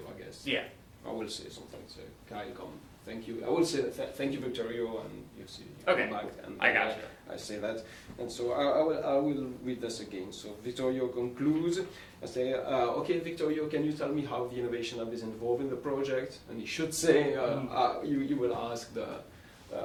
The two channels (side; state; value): both; identical; correlation 1.00